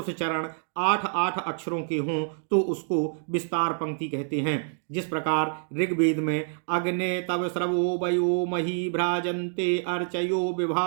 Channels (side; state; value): left; silent; digital silence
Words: चरण 8 अक्षरों के हों तो उसको विस्तार पंक्ति कहते हैं। जिस प्रकार ऋग्वेद में अग्ने तव स्रवो वयो मही भ्राजन्ते अर्चयो